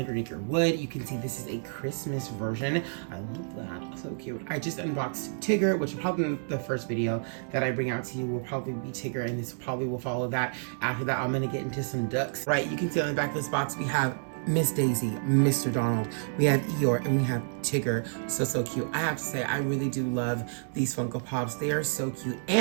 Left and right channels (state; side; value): silent; left; digital silence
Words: Wood. You can see this is a Christmas version. I love that, so cute. I just unboxed Tigger, which will probably be the first video that I bring out to you will probably be Tigger, and this probably will follow that. After that, I'm going to get into some ducks. Right, you can see on the back of this box we have Miss Daisy, Mr. Donald, we have Eeyore, and we have Tigger. So cute. I have to say, I really do love these Funko Pops. They are so cute.